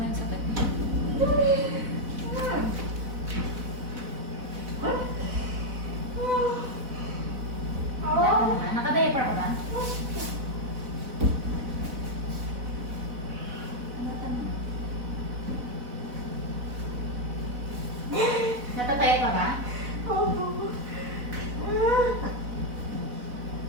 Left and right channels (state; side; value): late; left; 4.0 ms